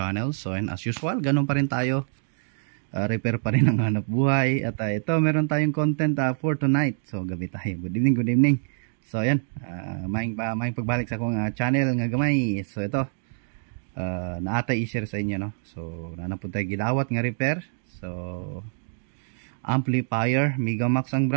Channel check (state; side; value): silent; left; digital silence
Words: So ayan, as usual, ganun pa rin tayo, repair pa rin ang hanap buhay. At ito, meron tayong content for tonight. So gabi tayo, good evening. So ayan, maing pagbalik sa akong channel nga gamay. So ito, naatay i-share sa inyo, no? So nanapod tayo gidawat nga repair. So amplifier, Megamax ang